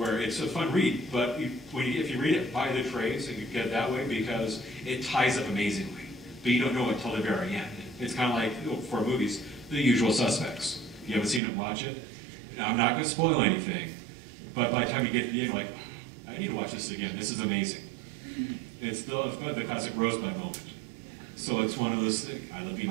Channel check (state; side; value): drops out; left; at 11.4 s